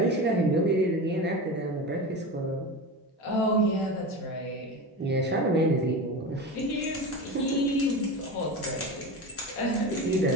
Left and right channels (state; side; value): normal; both; correlation 0.26